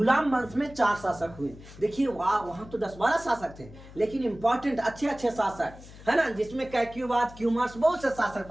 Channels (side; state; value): left; noise; hum, 18 dB below the sound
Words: वंश में 4 शासक हुए। देखिए वहां तो 10-12 शासक थे, लेकिन इंपॉर्टेंट अच्छे शासक, है ना, जिसमें कैक्युबाद, क्यूमर्स, बहुत से शासक